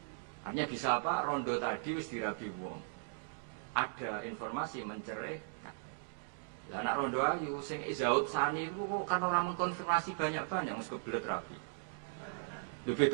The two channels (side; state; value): left; silent; digital silence